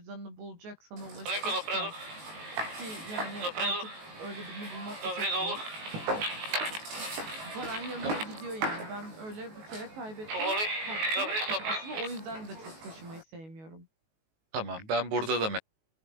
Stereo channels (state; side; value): late; left; 19 ms